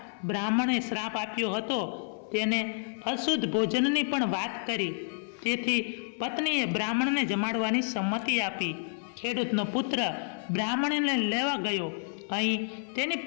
બ્રાહ્મણે શ્રાપ આપ્યો હતો તેને અશુદ્ધ ભોજનની પણ વાત કરી. તેથી પત્નીએ બ્રાહ્મણને જમાડવાની સંમતિ આપી. ખેડૂતનો પુત્ર બ્રાહ્મણને લેવા ગયો. અહીં તેની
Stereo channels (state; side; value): silent; right; 58 dB below the other